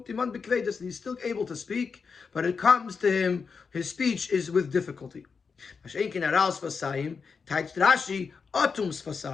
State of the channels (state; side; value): quieter; right; 5.4 dB